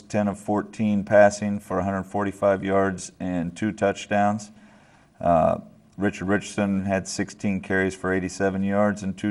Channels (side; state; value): both; identical; correlation 1.00